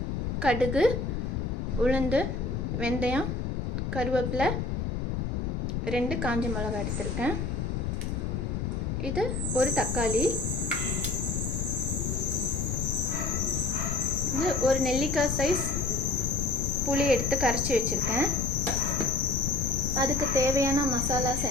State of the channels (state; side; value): noise; left; rumble, 1 dB below the sound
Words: கடுகு, உளுந்து, வெந்தயம், கருவேப்பிலை, 2 காஞ்ச மிளகாய் எடுத்திருக்கேன். இது ஒரு தக்காளி, இது ஒரு நெல்லிக்காய் சைஸ் புளி எடுத்து கரைச்சி வச்சுருக்கேன். அதுக்கு தேவையான மசாலாஸ்